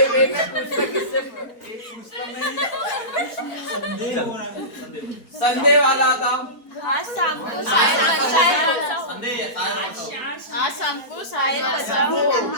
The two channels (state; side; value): late; right; 4.4 ms